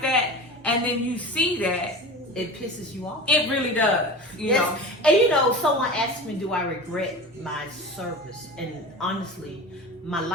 that and then you see that, it pisses you off. it really does, you know. And someone asked me, do I regret my service? And honestly, my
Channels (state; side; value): normal; both; correlation 0.32